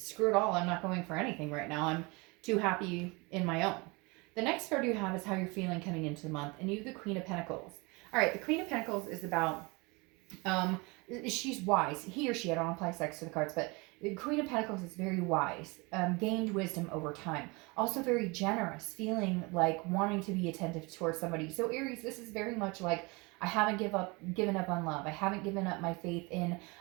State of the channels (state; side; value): quieter; left; 26.9 dB